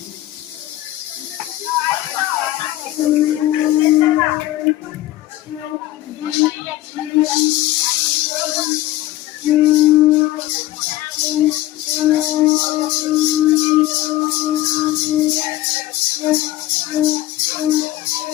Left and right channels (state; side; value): quieter; right; 15.6 dB